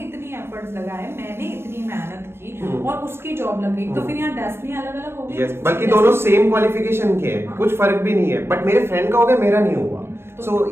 एफर्ट्स लगाए, मैंने इतनी मेहनत की और उसकी जॉब लग गई, तो फिर यहाँ डेस्टिनी अलग अलग हो गई। बल्कि दोनों सेम क्वालिफिकेशन के हैं, कुछ फर्क भी नहीं है, बट मेरे फ्रेंड का हो गया, मेरा नहीं हुआ। सो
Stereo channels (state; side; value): late; left; 0.12 ms